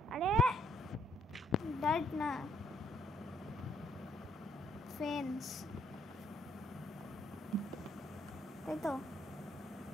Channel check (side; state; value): both; normal; correlation 0.70